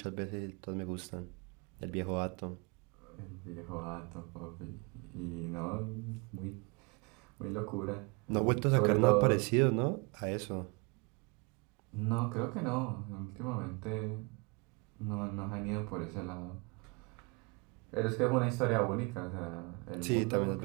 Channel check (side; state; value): left; quieter; 30.1 dB